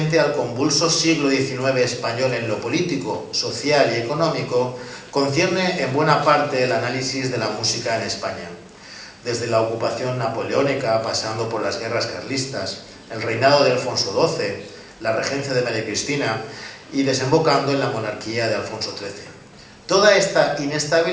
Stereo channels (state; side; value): identical; both; correlation 1.00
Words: al convulso siglo XIX español en lo político, social y económico, concierne en buena parte el análisis de la música en España, desde la ocupación napoleónica, pasando por las guerras carlistas, el reinado de Alfonso XII, la regencia de María Cristina y desembocando en la monarquía de Alfonso XIII. Toda esta